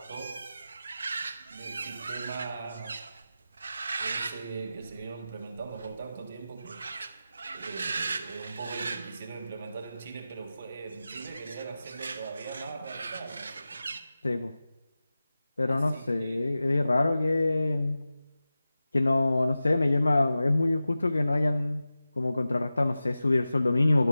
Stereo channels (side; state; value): both; inverted; correlation -0.94